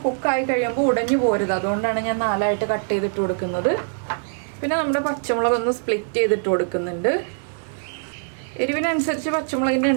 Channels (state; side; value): silent; left; digital silence